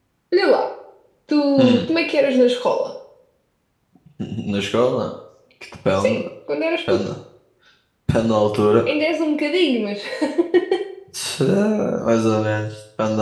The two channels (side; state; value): both; identical; correlation 1.00